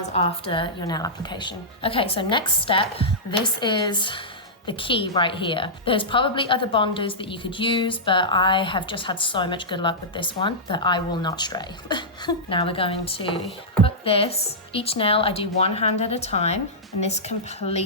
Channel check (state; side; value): normal; both; correlation -0.12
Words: after your nail application. Okay, so next step, this is the key right here. There's probably other bonders that you could use, but I have just had so much good luck with this one that I will not stray. Now we're going to put this, each nail I do one hand at a time, and this